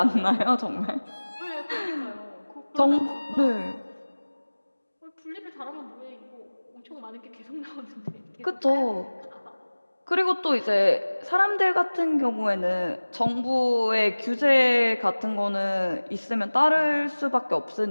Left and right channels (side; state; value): both; inverted; correlation -1.00